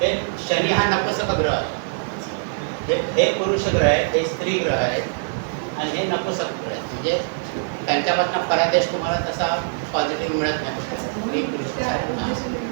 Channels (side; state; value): left; silent; digital silence